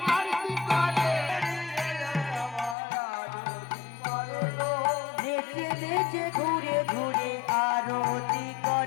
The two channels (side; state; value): right; drops out; at 2.8 s